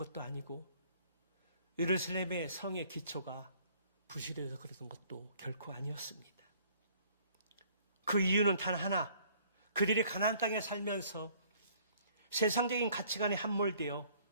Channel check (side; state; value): both; inverted; correlation -0.59